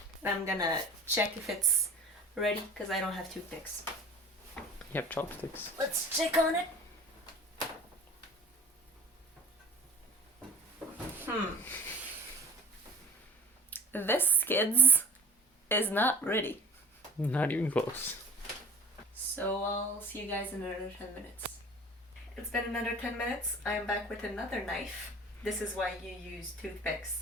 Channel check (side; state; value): both; normal; correlation 0.43